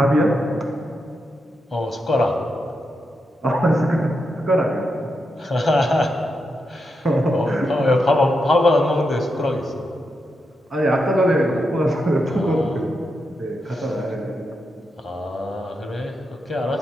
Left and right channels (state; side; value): normal; both; correlation 0.85